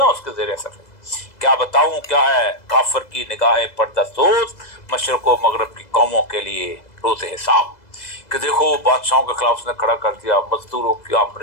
اس کے زیر اثر ہے. کیا بتاؤں کیا ہے کافر کی نگاہ پردہ سوز، مشرق و مغرب کی قوموں کے لیے روز حساب. کہ دیکھو بادشاہوں کے خلاف اس نے کھڑا کر دیا، مزدوروں کی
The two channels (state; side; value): late; right; 2.0 ms